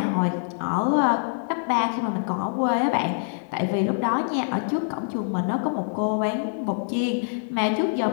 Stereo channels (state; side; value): silent; right; digital silence